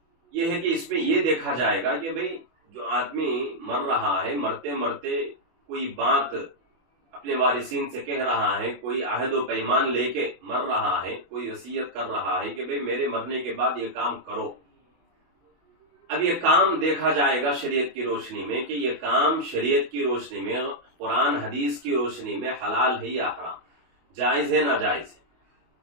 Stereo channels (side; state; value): left; late; 24 ms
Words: یہ ہے کہ اس میں یہ دیکھا جائے گا کہ بھئی جو آدمی مر رہا ہے، مرتے مرتے کوئی بات اپنے وارثین سے کہہ رہا ہے، کوئی عہد و پیمان لے کے مر رہا ہے، کوئی وصیت کر رہا ہے کہ بھئی میرے مرنے کے بعد یہ کام کرو. اب یہ کام دیکھا جائے گا شریعت کی روشنی میں کہ یہ کام شریعت کی روشنی میں، قرآن حدیث کی روشنی میں حلال ہے یا حرام، جائز ہے ناجائز ہے.